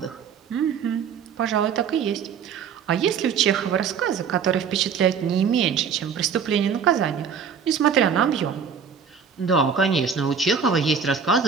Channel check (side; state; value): left; quieter; 6.7 dB